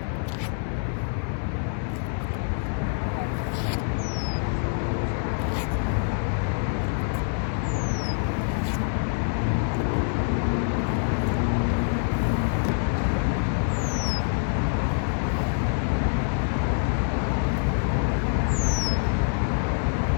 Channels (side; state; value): right; silent; 61 dB below the other